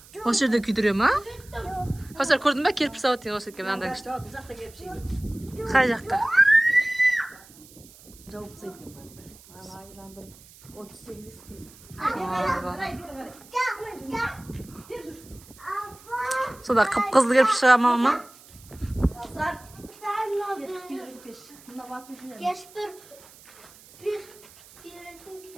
Осы жерде күйдіре ма? Каусар, көрдің ба? Кірпіш сауыт деген осы екен. Мынандай күшті. Қай жаққа? Сода қып-қызыл кірпіш шыға ма? Keş bir yönetim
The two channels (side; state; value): right; noise; hiss, 22 dB below the sound